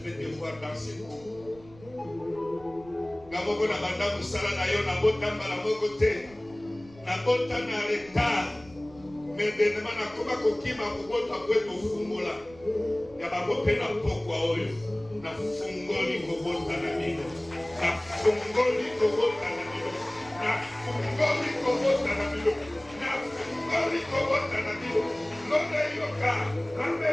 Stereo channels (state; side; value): noise; right; rumble, 23 dB below the sound